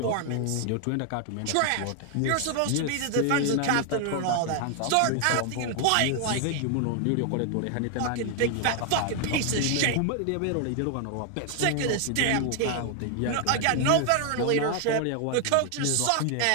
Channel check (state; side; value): different; both; correlation 0.00